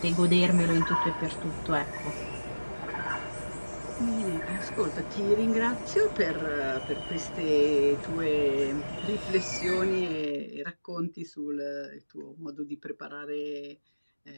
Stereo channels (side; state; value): both; inverted; correlation -1.00